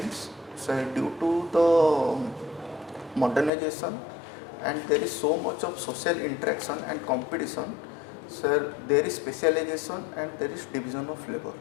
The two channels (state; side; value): drops out; right; at 3.5 s